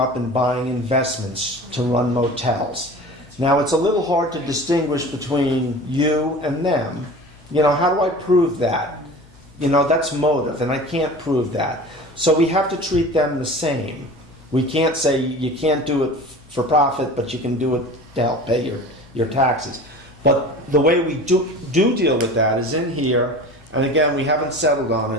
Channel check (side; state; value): left; noise; hum, 27 dB below the sound